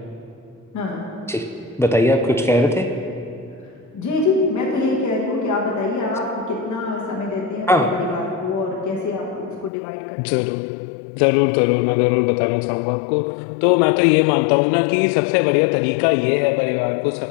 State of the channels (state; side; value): drops out; right; at 9.7 s